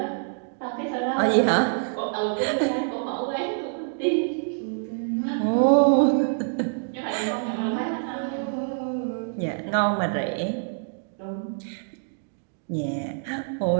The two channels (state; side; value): silent; left; digital silence